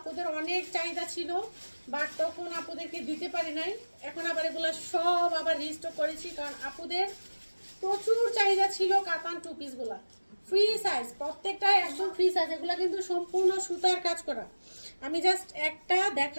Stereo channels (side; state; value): both; inverted; correlation -1.00